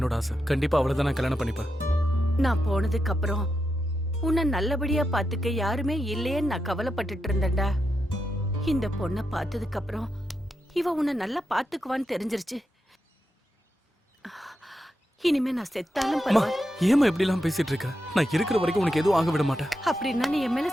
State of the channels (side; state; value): both; normal; correlation 0.86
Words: ஆசை. கண்டிப்பா அவளை தான் நான் கல்யாணம் பண்ணிப்பேன். நான் போனதுக்கு அப்புறம் உன்னை நல்லபடியா பாத்துக்க யாருமே இல்லையேன்னு நான் கவலைப்பட்டுட்டு இருந்தேன்டா. இந்த பொண்ணை பார்த்ததுக்கு அப்புறம் இவ உன்னை நல்லா பாத்துக்குவான்னு தெரிஞ்சிருச்சு. இனிமே நான் செத்தாலும் பரவாயில்ல. ஏமா இப்படி எல்லாம் பேசிட்டு இருக்க? நான் இருக்கிற வரைக்கும் உனக்கு எதுவும் ஆக விட மாட்டேன். அப்படின்னா நீ என் மேல